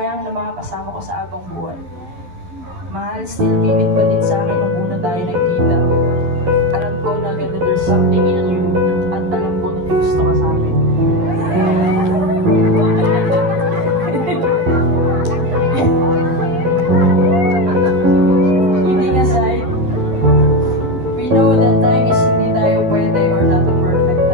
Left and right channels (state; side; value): late; left; 11 ms